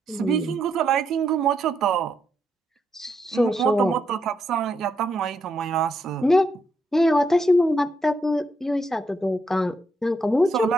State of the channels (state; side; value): normal; both; correlation 0.78